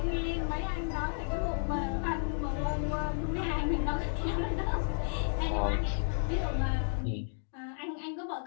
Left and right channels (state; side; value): silent; right; digital silence